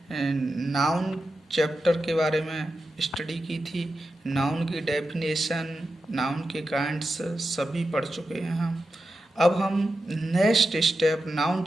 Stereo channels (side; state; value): both; normal; correlation 0.90